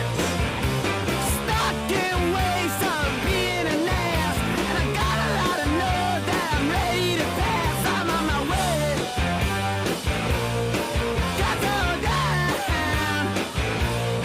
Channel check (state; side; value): identical; both; correlation 1.00